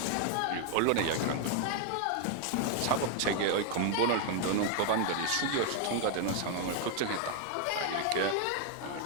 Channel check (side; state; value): both; different; correlation 0.00